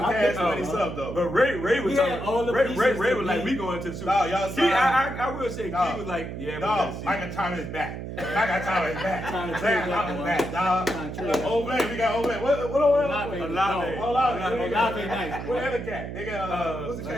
I cash think- money stuff though. But Ray was We talking. had all the Ray pieces was to like, be- we going to the Super No, Bowl. y'all Key, signed- I will say, Dog. Key was like, yeah, we Dog, gotta see. Michael Thomas back. Michael Thomas back. Trying to Michael trade that Thomas one. back, dog. Trying to trade that Olave, one. we got Olave. What Olave. Olave. Olave nice, boy. What other cat? They got what's the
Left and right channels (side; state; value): right; noise; hum, 7 dB below the sound